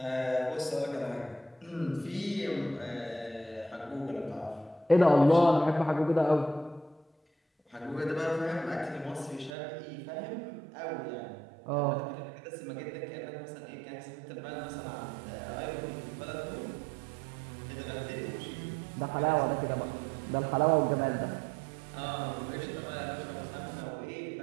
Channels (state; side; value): drops out; left; at 9.5 s